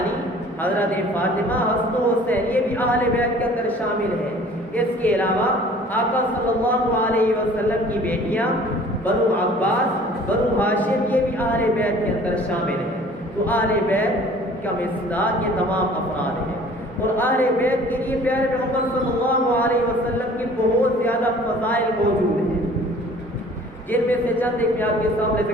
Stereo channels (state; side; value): normal; both; correlation 0.50